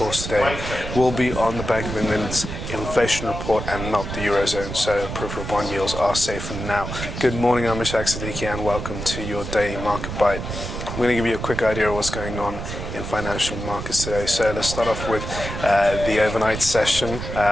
today will be on the Bank of England's inflation report and not the Eurozone, so peripheral bond yields are safe for now. Good morning, I'm Ishaq, Siddiqi, and welcome to your daily market bite. I'm going to give you a quick idea of what's going on in financial markets today. So let's start off with the overnight session,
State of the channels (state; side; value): noise; right; rumble, 6 dB below the sound